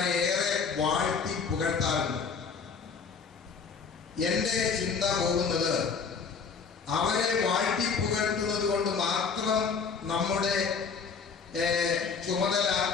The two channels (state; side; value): quieter; right; 5.6 dB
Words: ഏറെ വാഴ്ത്തി പുകഴ്ത്താറുണ്ട്. എൻ്റെ ചിന്ത പോകുന്നത് അവരെ വാഴ്ത്തി പുകഴ്ത്തുന്നത് കൊണ്ട് മാത്രം നമ്മുടെ ചുമതല